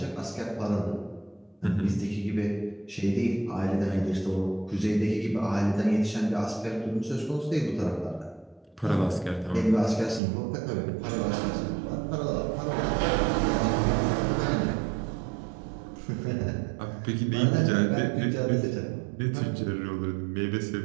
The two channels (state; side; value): drops out; left; at 10.2 s